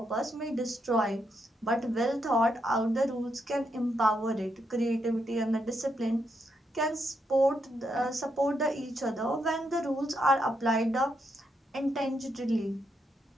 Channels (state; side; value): normal; both; correlation 0.80